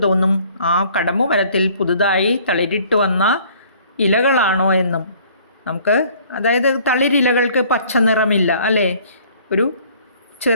തോന്നും ആ കടമ്പു മരത്തിൽ പുതുതായി തളിരിട്ട് വന്ന ഇലകളാണോ എന്നും. നമുക്ക്, അതായത് തളിരിലകൾക്ക് പച്ച നിറമില്ല അല്ലേ, ഒരു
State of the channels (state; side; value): inverted; both; correlation -0.56